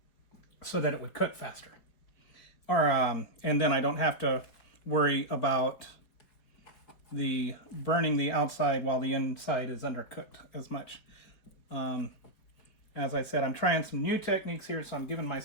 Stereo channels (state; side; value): late; right; 4.8 ms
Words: so that it would cook faster. Or and then I don't have to worry about the burning the outside while the inside is undercooked as much. As I said, I'm trying some new techniques here, so I'm giving